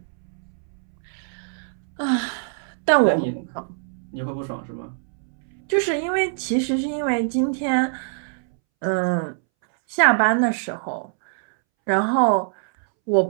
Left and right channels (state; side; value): silent; left; 63 dB below the other